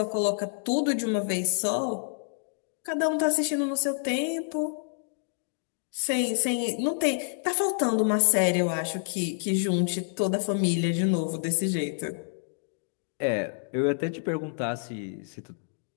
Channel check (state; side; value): silent; right; digital silence